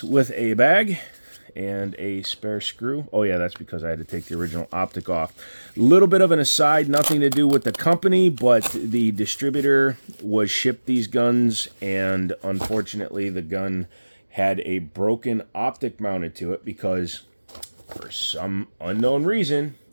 with a bag and a spare screw. Oh yeah, that's because I had to take the original optic off. A little bit of an aside, nothing to do with the company, but the distributor was shipped these guns, and unfortunately the gun had a broken optic mounted to it because for some unknown reason,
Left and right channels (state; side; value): inverted; both; correlation -1.00